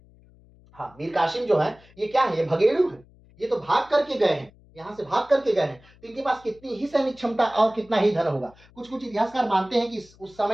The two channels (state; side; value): noise; left; hum, 27 dB below the sound